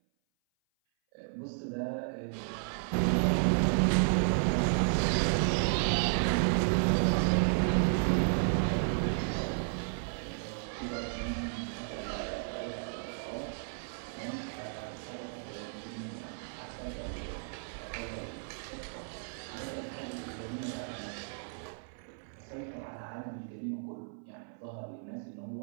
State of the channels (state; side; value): silent; left; 56 dB below the other